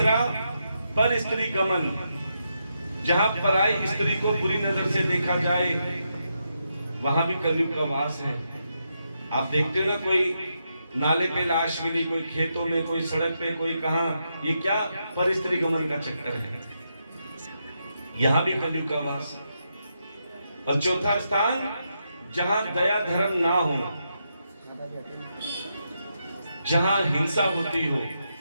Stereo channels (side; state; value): both; inverted; correlation -0.83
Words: पर स्त्री गमन, जहां पराई स्त्री को बुरी नजर से देखा जाए, वहां भी कलयुग का वास है। आप देखते हो ना, कोई नाले पे लाश मिली, कोई खेतों में, कोई सड़क पे, कोई कहां, ये क्या पर स्त्री गमन का चक्कर है। यहां भी कलयुग का वास। और चौथा स्थान, जहां दया धर्म ना हो, जहां हिंसा होती हो,